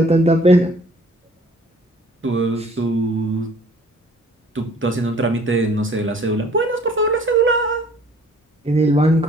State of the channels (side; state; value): both; normal; correlation 0.55